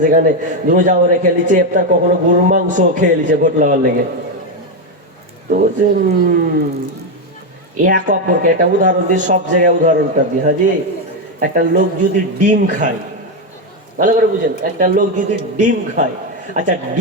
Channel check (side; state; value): both; normal; correlation 0.07